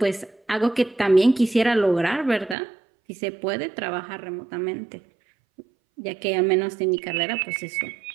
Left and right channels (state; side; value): drops out; left; at 2.6 s